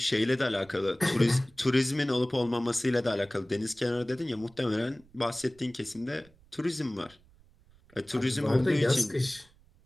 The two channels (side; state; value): right; noise; rumble, 29 dB below the sound